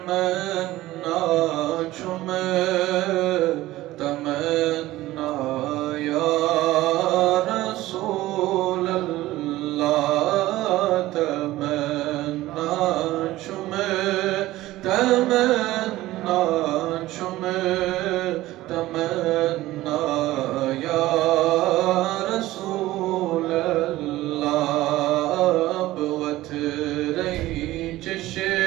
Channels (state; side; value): quieter; left; 16.7 dB